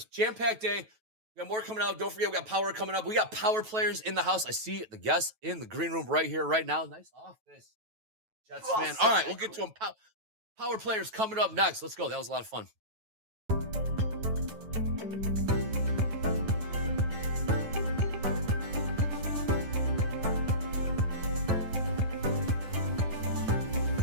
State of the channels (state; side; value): late; left; 9.2 ms